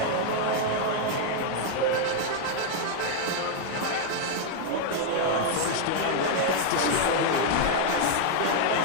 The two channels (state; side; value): different; both; correlation 0.00